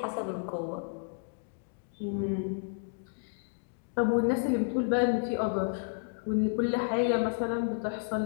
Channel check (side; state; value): right; silent; digital silence